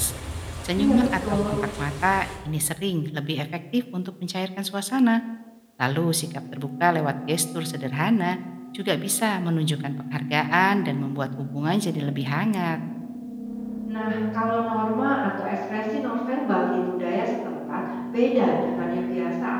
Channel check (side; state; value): both; identical; correlation 1.00